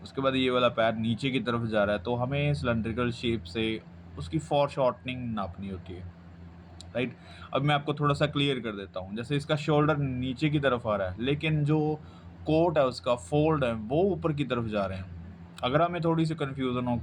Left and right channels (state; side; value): identical; both; correlation 1.00